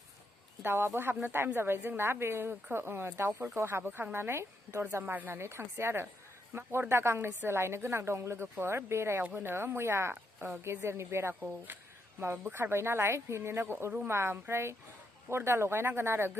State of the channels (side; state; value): both; normal; correlation 0.79